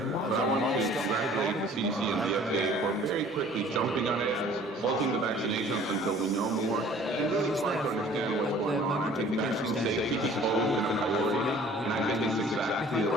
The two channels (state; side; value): normal; both; correlation 0.51